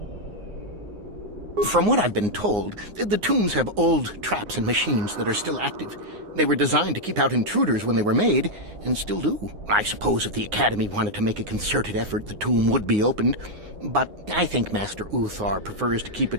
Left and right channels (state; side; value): late; left; 9.6 ms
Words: From what I've been told, the tombs have old traps and machines that are still active. They were designed to keep out intruders when they were made, and still do. I suppose if the Academy wanted to make a concerted effort, the tomb would be opened. But I think Master Uthar prefers to keep it